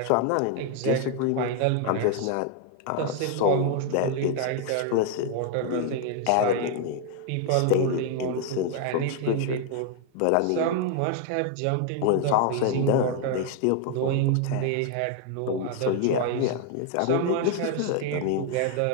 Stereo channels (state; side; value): different; both; correlation 0.00